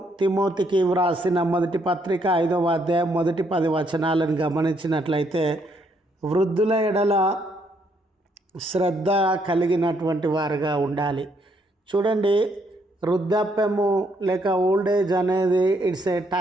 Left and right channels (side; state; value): both; normal; correlation 0.72